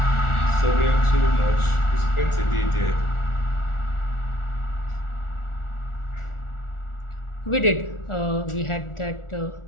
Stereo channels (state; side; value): late; right; 1.4 ms